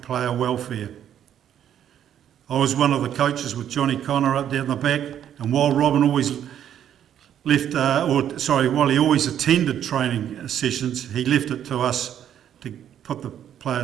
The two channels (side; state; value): left; quieter; 10.0 dB